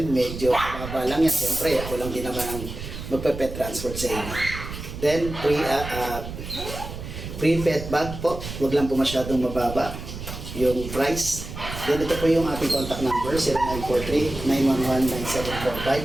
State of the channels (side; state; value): right; noise; rumble, 9 dB below the sound